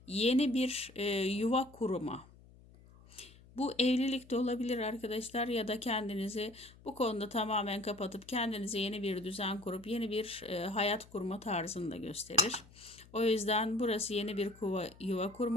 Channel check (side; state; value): left; noise; hum, 23 dB below the sound